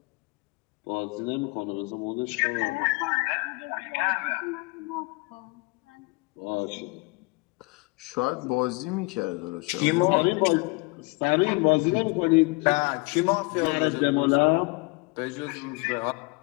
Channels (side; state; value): right; quieter; 28.3 dB